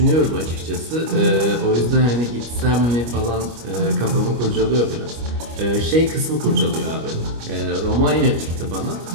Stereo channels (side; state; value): left; late; 25 ms